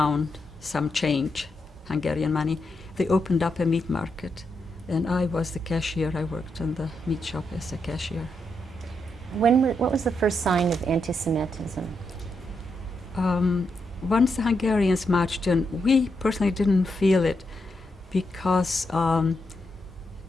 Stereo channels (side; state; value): both; normal; correlation 0.82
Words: some change, Hungarian money. They opened up a meat market, and I was the cashier. I worked in the meat shop as a cashier. What was the first sign of anti-Semitism? Once the Hungarians marched in, we personally didn't feel it because